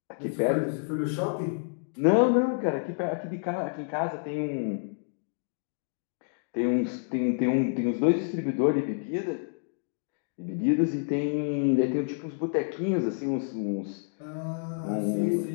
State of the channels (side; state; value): right; silent; digital silence